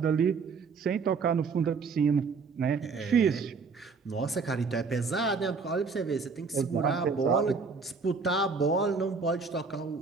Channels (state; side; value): quieter; left; 4.8 dB